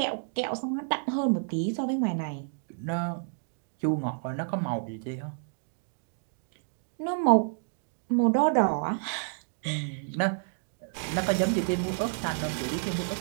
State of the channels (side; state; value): left; silent; digital silence